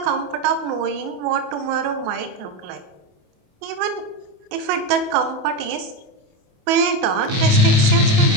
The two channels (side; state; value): left; late; 28 ms